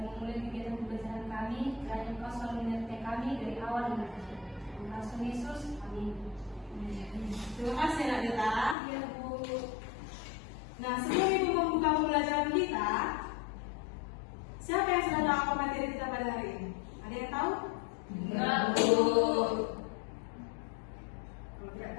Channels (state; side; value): drops out; right; at 8.8 s